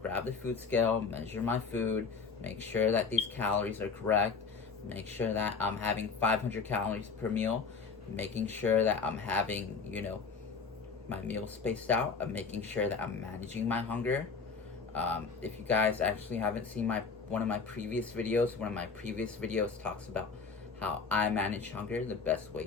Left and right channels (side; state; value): right; quieter; 5.1 dB